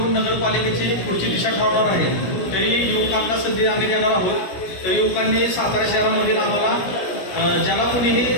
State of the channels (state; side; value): late; right; 17 ms